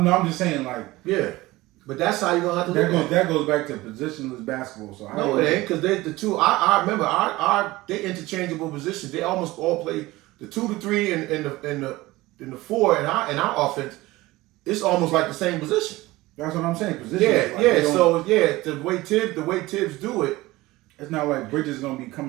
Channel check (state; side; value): quieter; left; 19.2 dB